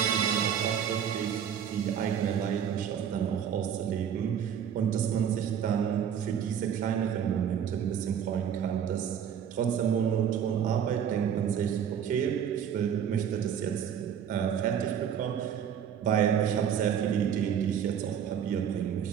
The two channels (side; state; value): left; quieter; 8.5 dB